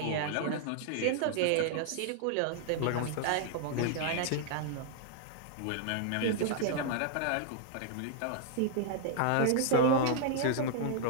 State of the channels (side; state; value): both; different; correlation -0.01